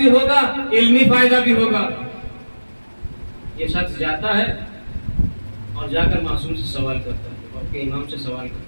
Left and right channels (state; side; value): inverted; both; correlation -1.00